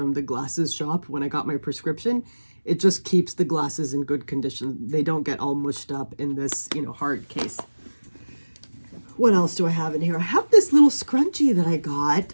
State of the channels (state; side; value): inverted; both; correlation -1.00